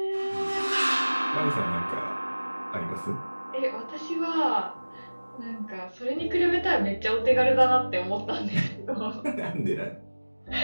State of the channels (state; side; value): inverted; both; correlation -1.00